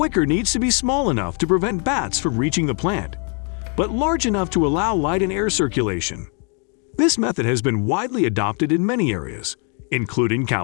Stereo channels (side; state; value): right; quieter; 39.0 dB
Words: needs to be small enough to prevent bats from reaching the plant, but large enough to allow light and air circulation. This method has been widely adopted in many areas, including